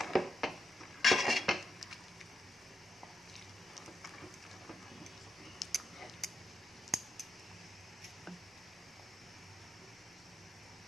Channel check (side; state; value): both; normal; correlation 0.83